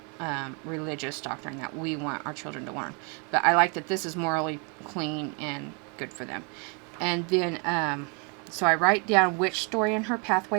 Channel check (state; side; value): quieter; left; 35.4 dB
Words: religious doctrine that we want our children to learn. But I like that this is morally clean and good for them. And then, so I write down which story in her